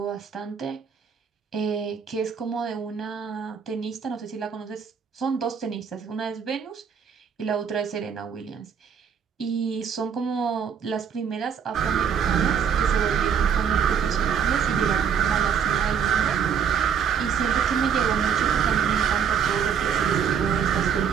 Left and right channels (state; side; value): quieter; left; 7.4 dB